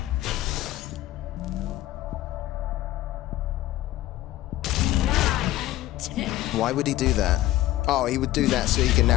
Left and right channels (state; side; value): quieter; right; 15.1 dB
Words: Why would he do that? Oh, he would do that so he can